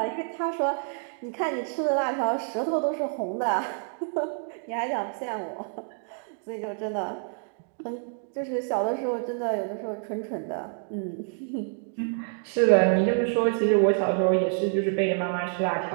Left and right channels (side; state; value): left; silent; 60 dB below the other